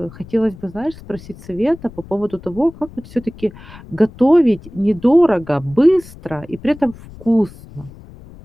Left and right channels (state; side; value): noise; left; rumble, 19 dB below the sound